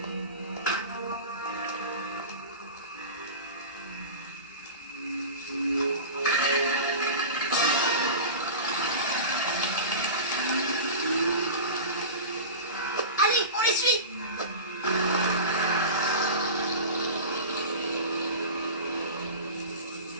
Allez, on les suit.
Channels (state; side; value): inverted; both; correlation -0.32